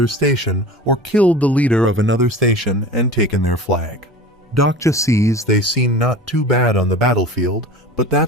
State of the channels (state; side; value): normal; both; correlation 0.36